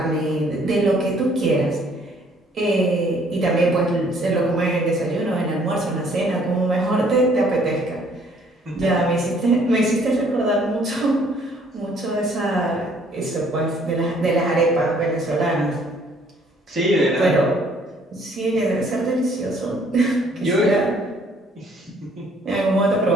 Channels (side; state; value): both; normal; correlation 0.62